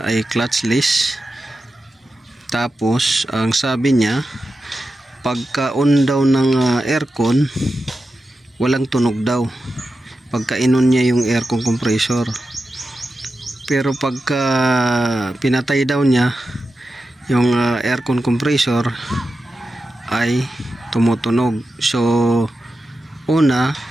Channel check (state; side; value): normal; both; correlation 0.91